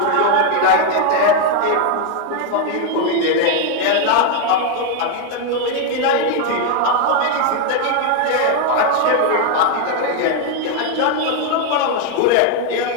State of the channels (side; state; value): both; different; correlation 0.01